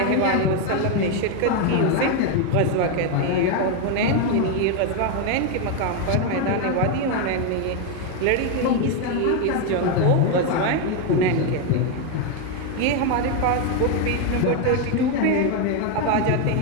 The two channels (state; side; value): different; both; correlation 0.02